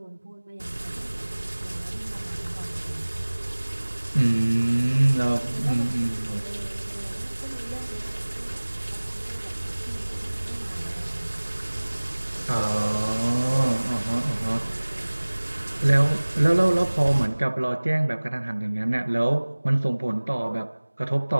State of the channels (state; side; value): inverted; both; correlation -1.00